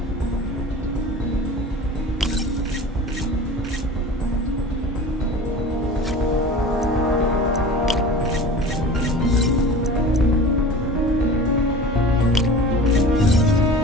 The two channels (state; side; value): normal; both; correlation 0.38